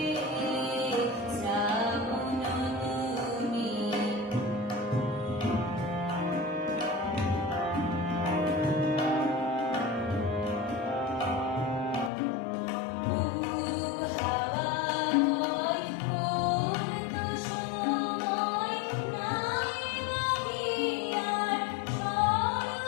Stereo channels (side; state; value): right; drops out; at 12.1 s